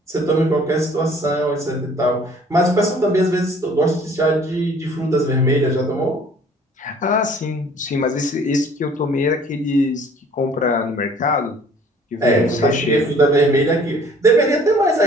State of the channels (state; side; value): normal; both; correlation 0.55